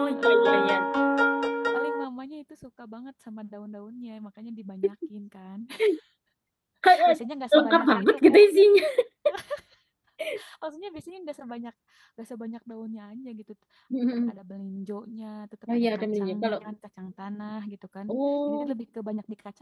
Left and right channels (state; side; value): identical; both; correlation 1.00